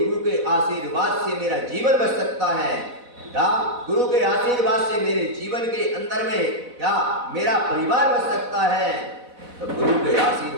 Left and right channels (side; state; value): left; late; 4.1 ms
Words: के आशीर्वाद से मेरा जीवन बच सकता है, क्या, गुरु के आशीर्वाद से मेरे जीवन के अंदर में क्या मेरा परिवार बच सकता है, तो गुरु के